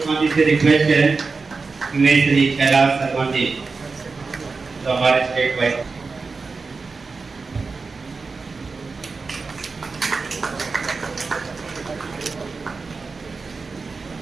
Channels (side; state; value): left; quieter; 4.3 dB